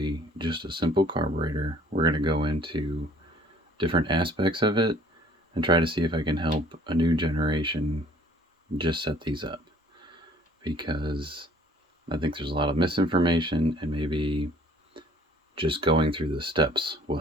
just a simple carburetor. We're going to go into different aspects of it and try to see if I can help a new generation just set these up, because I think there's a lot of misinformation, and maybe just going through the steps will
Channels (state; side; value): normal; both; correlation 0.55